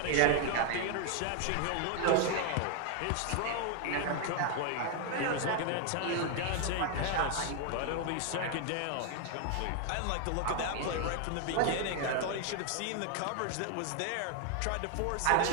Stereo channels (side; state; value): both; different; correlation 0.00